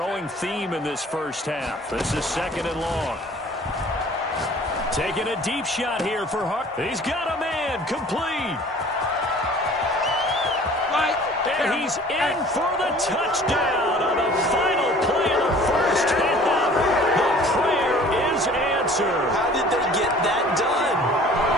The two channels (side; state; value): both; normal; correlation 0.49